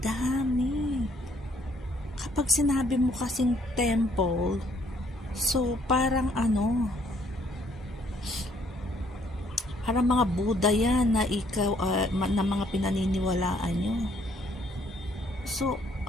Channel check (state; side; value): normal; both; correlation 0.65